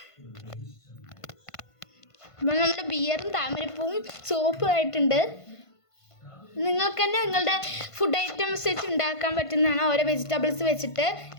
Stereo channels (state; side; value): late; right; 1.5 ms